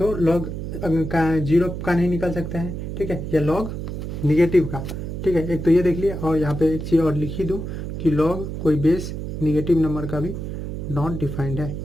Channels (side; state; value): right; noise; hum, 6 dB below the sound